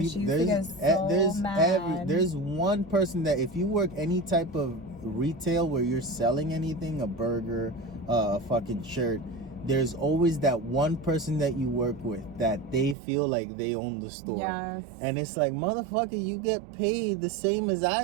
she used to get so mad. There's one person that if you work any type of retail where you're selling anything, a burger, a fucking shirt, there's always that one person that you work with that they feel like they own the store. Yes. And it's like, motherfucker, you get paid the same as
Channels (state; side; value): drops out; left; at 13.0 s